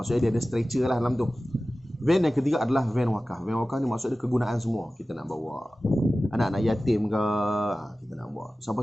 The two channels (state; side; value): normal; both; correlation 0.96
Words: dia ada stretcher lah dalam tu. Van yang ketiga adalah van wakaf. Van wakaf ni maksud dia kegunaan semua. Kita nak bawa anak-anak yatim ke, kita nak bawa